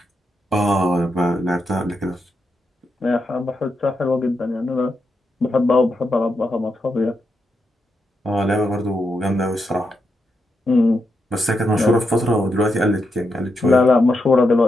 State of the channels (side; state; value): both; normal; correlation 0.84